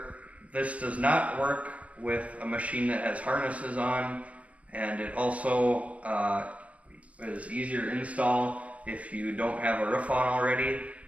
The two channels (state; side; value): late; left; 0.066 ms